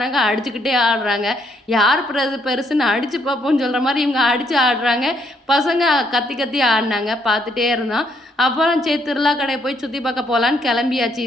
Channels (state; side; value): normal; both; correlation 0.71